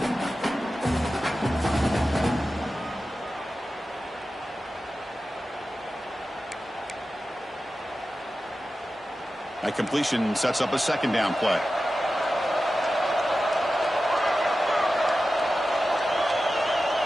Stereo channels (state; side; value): normal; both; correlation 0.93